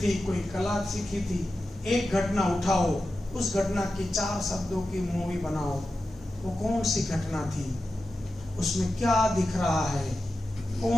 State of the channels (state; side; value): normal; both; correlation 0.92